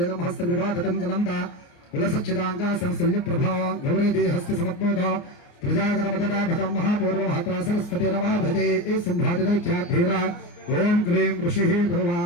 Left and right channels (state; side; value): late; right; 29 ms